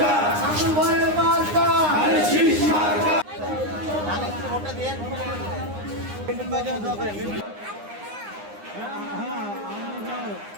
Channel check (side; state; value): left; late; 9.8 ms